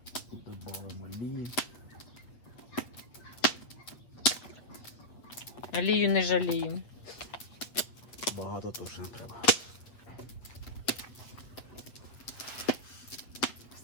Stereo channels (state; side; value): late; right; 8.4 ms